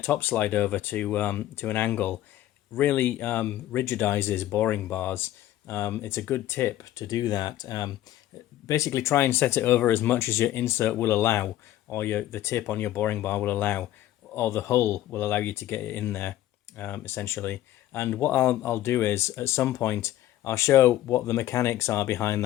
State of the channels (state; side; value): quieter; right; 13.9 dB